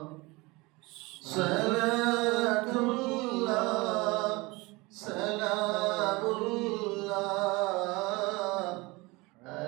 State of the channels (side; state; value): left; quieter; 23.8 dB